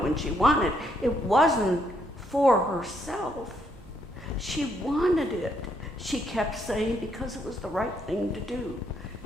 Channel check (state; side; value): normal; both; correlation 0.73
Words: when she wanted. It wasn't for herself. She wanted it. She kept saying because it was the right thing to do.